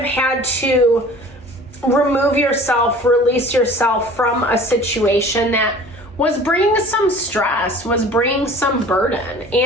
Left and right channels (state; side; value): normal; both; correlation 0.46